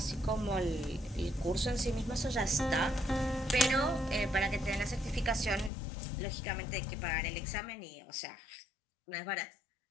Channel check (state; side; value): drops out; right; at 5.7 s